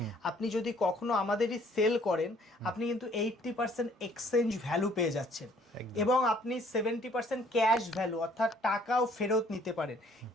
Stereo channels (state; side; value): normal; both; correlation 0.60